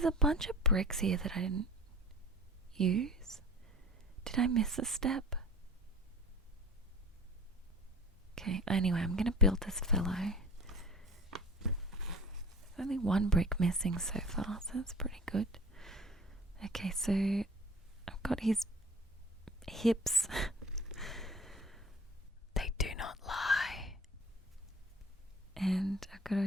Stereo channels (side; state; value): both; normal; correlation 0.41